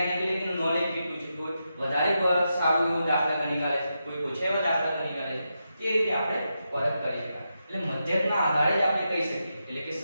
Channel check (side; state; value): both; inverted; correlation -0.86